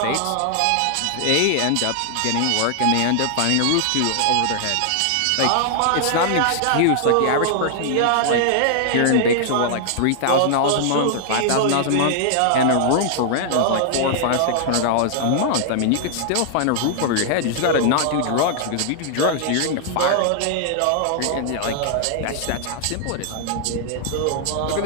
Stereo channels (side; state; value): both; different; correlation -0.01